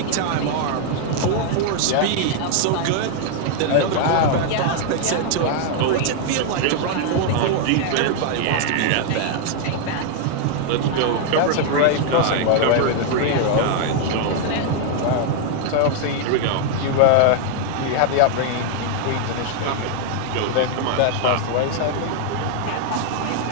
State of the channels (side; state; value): both; different; correlation 0.00